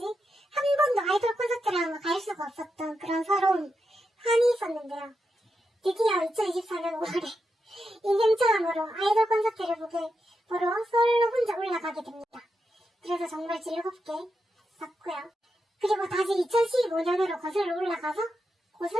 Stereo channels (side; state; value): both; normal; correlation 0.86